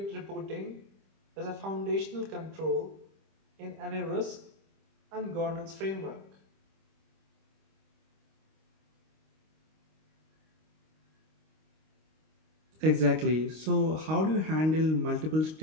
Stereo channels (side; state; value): left; late; 25 ms